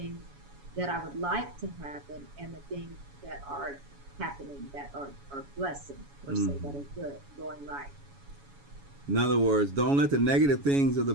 that I would like to happen and the things that are happening that are blessings, per se, that Mm-hmm. are good, going right. In other words, don't let the negative things of the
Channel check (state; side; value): late; left; 7.1 ms